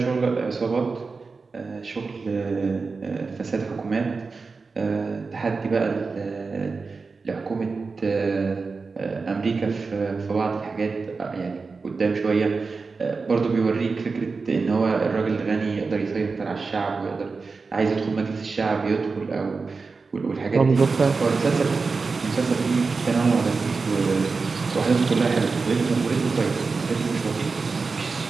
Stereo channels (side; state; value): left; quieter; 4.4 dB